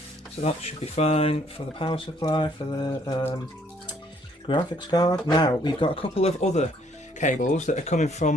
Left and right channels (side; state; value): both; normal; correlation 0.65